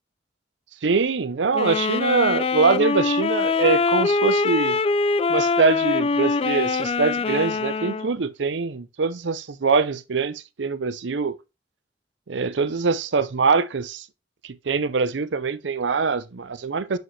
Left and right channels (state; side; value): normal; both; correlation -0.11